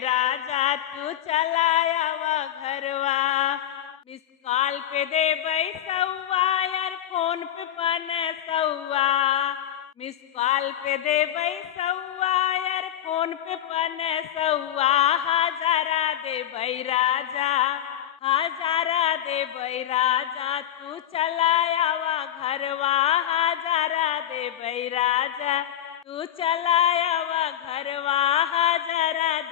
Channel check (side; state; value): right; quieter; 10.9 dB